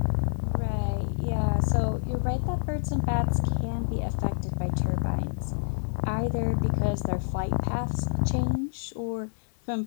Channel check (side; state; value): right; silent; digital silence